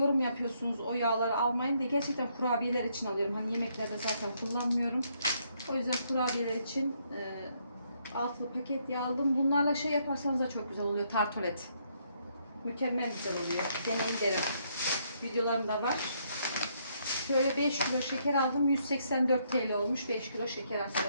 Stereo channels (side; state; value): both; inverted; correlation -0.73